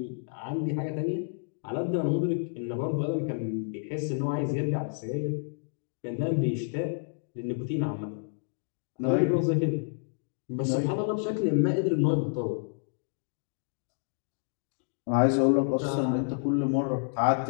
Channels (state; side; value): silent; right; digital silence